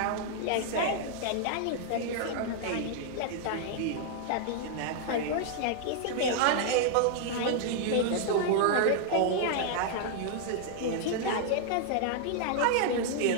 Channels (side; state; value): both; different; correlation -0.01